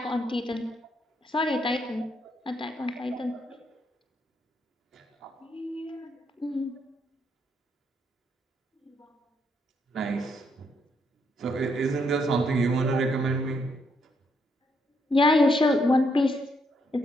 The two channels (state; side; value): normal; both; correlation 0.75